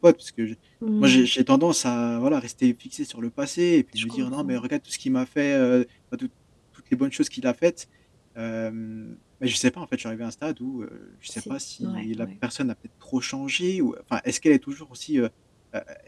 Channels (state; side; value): identical; both; correlation 1.00